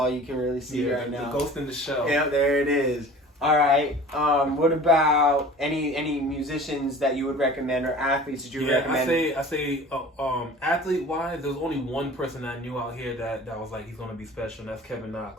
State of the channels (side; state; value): both; normal; correlation 0.42